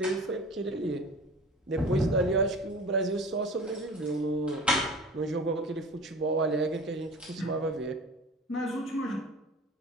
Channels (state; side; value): normal; both; correlation 0.39